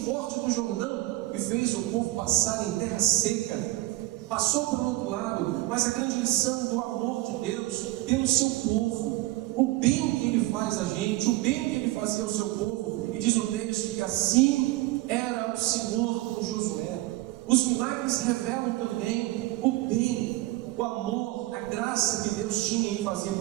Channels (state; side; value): quieter; left; 18.4 dB